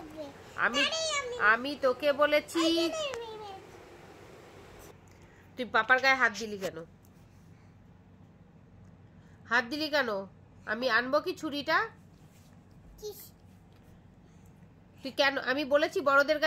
আমি তোকে বলেছি, তুই পাপার গায়ে হাত দিলি কেন? হাত দিলি কেন? আমি আনবো কি ছুরিটা? তুই কেন? আমি বলেছি বড়দের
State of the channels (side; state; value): both; identical; correlation 1.00